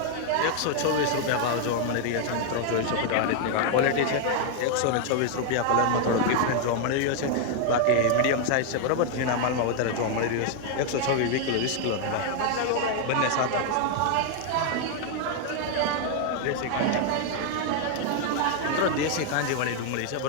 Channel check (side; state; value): both; different; correlation 0.00